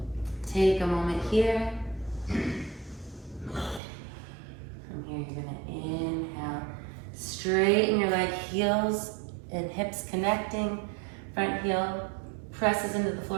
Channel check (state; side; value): drops out; left; at 3.8 s